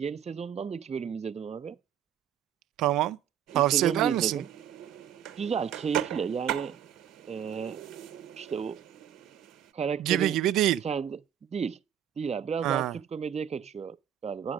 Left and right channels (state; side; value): quieter; left; 9.5 dB